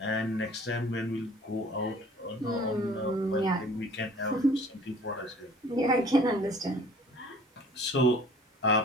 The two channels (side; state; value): both; normal; correlation 0.50